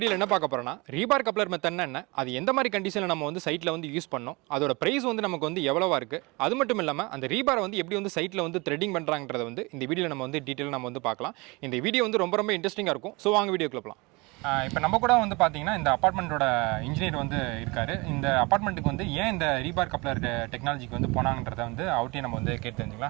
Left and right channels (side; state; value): left; quieter; 25.8 dB